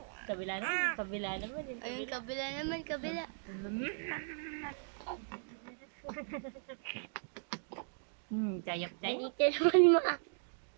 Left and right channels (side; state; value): left; silent; digital silence